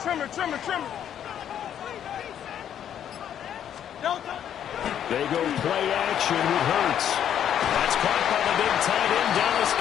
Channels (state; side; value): quieter; right; 9.7 dB